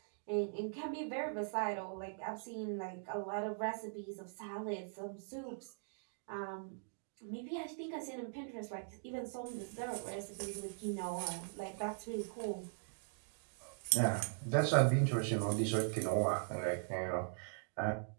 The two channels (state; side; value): silent; left; digital silence